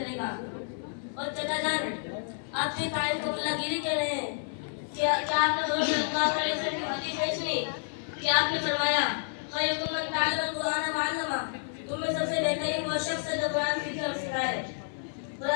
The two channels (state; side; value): silent; right; 58 dB below the other